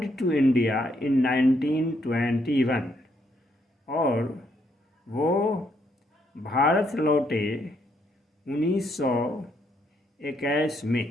to India in 1921, और वो भारत लौटे 1921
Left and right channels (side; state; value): both; normal; correlation 0.74